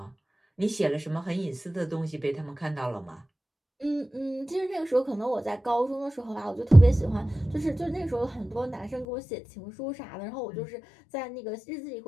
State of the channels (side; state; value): right; drops out; at 9.1 s